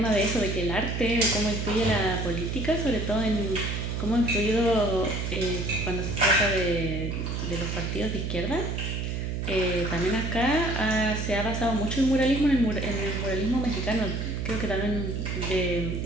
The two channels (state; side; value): noise; right; hum, 2 dB below the sound